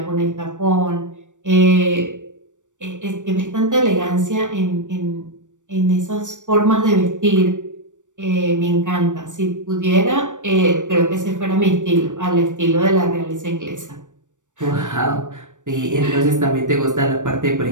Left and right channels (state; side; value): late; left; 0.86 ms